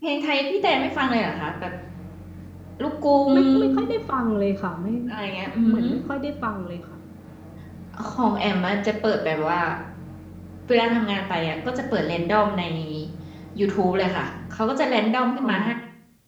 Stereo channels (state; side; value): identical; both; correlation 1.00